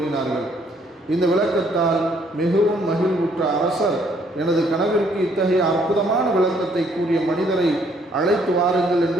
இந்த விளக்கத்தால் மிகவும் மகிழ்வுற்ற அரசர், எனது கனவிற்கு இத்தகைய அற்புதமான விளக்கத்தை கூறிய மனிதரை அழைத்து வாருங்கள்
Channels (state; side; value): normal; both; correlation 0.66